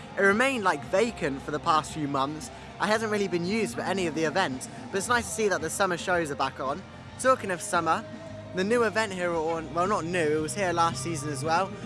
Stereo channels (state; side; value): identical; both; correlation 1.00